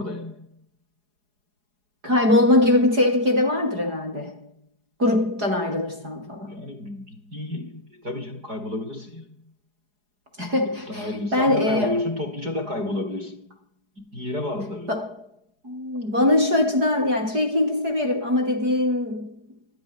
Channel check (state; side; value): late; left; 4.8 ms